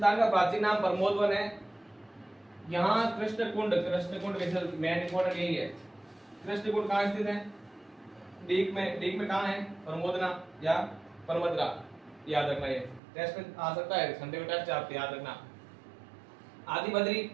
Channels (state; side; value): drops out; left; at 13.0 s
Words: का प्राचीन नाम प्रमोदवन है। यहाँ कृष्णकुंड मेन इंपोर्टेंट यही है। कृष्णकुंड कहाँ स्थित है, डीग में कहाँ है, प्रमोदना या परमदरा, याद रखना, ये टेस्ट में आ सकता है, संडे को टेस्ट आप याद रखना। आदि बद्री,